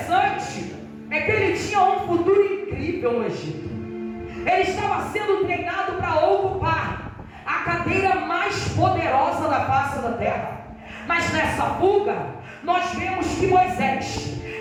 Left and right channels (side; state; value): both; identical; correlation 1.00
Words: é que ele tinha um futuro incrível no Egito. Ele estava sendo treinado para ocupar a cadeira mais poderosa da face da terra. Mas nessa fuga, nós vemos que Moisés,